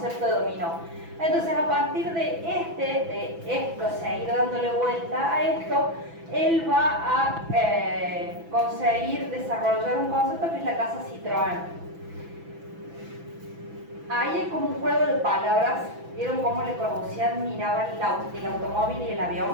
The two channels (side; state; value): left; late; 6.0 ms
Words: de dominó. Entonces, a partir de esto, seguir dándole vuelta a esto, él va a conseguir desarrollar un concepto que es la casa Citroën. Ahí hay como un juego de palabras. ¿Vieron cómo Le Corbusier miraba el automóvil y el